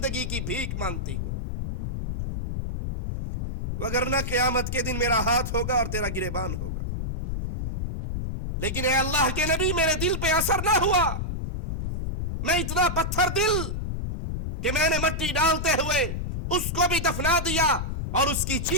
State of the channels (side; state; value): left; noise; rumble, 3 dB below the sound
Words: کی بھیک مانگتی ہوں، وگرنہ قیامت کے دن میرا ہاتھ ہوگا اور تیرا گریبان ہوگا. لیکن اے اللہ کے نبی میرے دل پہ اثر نہ ہوا. میں اتنا پتھر دل کہ میں نے مٹی ڈالتے ہوئے اس کو بھی دفنا دیا اور اس کی